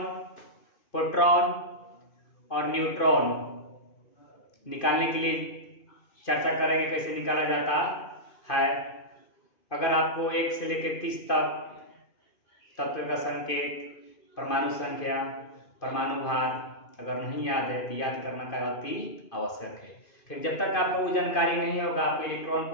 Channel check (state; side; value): late; right; 2.5 ms